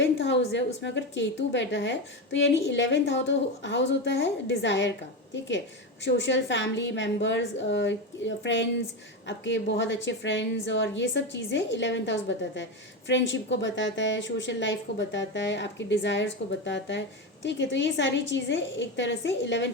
हाउस है उसमें अगर केतु बैठा है तो यानी 11th हाउस होता है डिज़ायर का, ठीक है। सोशल, फैमिली मेम्बर्स, फ्रेंड्स, आपके बहुत अच्छे फ्रेंड्स और ये सब चीज़ें 11th हाउस बताता है। फ्रेंडशिप को बताता है, सोशल लाइफ को बताता है, आपकी डिज़ायर्स को बताता है, ठीक है। तो ये सारी चीज़ें एक तरह से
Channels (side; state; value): both; normal; correlation 0.16